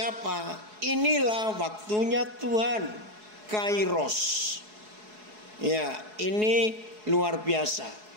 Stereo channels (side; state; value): left; late; 4.7 ms